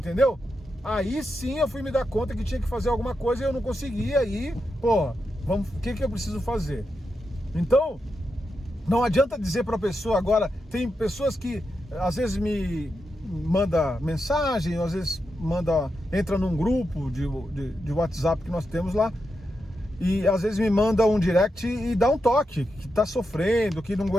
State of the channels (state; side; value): normal; both; correlation 0.87